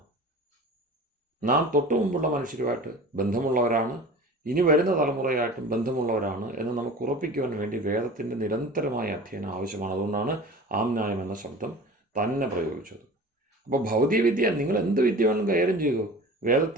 നാം തൊട്ടു മുമ്പുള്ള മനുഷ്യരുമായിട്ട് ബന്ധമുള്ളവരാണ്, ഇനി വരുന്ന തലമുറയായിട്ടും ബന്ധമുള്ളവരാണ് എന്ന് നമുക്ക് ഉറപ്പിക്കുവാൻ വേണ്ടി വേദത്തിൻ്റെ നിരന്തരമായ അധ്യയനം ആവശ്യമാണ്. അതുകൊണ്ടാണ് ആംനായം എന്ന ശബ്ദം തന്നെ പ്രയോഗിച്ചത്. അപ്പോൾ ഭൗതിക വിദ്യ, നിങ്ങൾ എന്ത് വിദ്യ വേണമെങ്കിലും കൈകാര്യം ചെയ്തു,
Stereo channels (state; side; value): normal; both; correlation 0.38